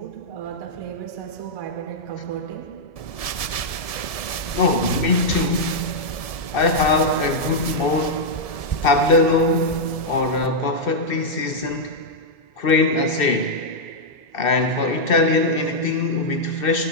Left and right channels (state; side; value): late; right; 1.7 ms